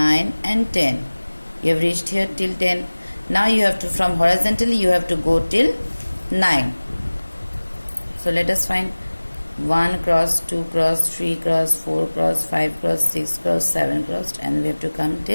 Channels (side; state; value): both; inverted; correlation -1.00